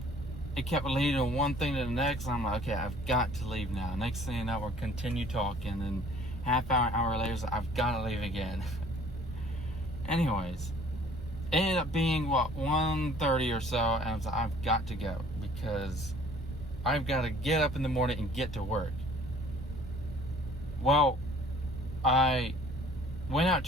it kept leading to one thing to the next. And I'm like, okay, I've got to leave now. Next thing you know, we'll continue talking. And hour later, I've got to leave again. Anyways, it ended up being 1:30 or so, and I was like, I've got to go because I've got to get up in the morning and get to work. Well, I went out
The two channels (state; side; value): normal; both; correlation 0.54